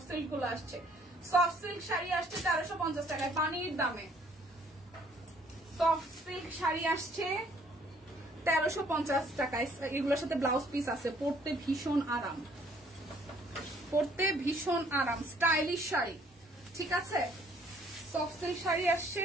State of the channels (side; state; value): both; normal; correlation 0.62